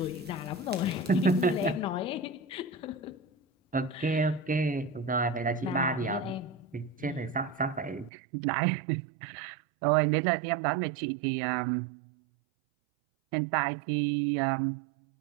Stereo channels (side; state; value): left; drops out; at 8.1 s